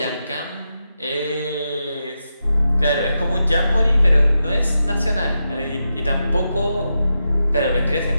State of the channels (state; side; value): inverted; both; correlation -0.87